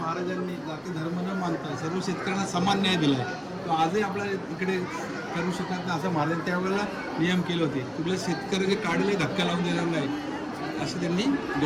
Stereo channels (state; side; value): identical; both; correlation 1.00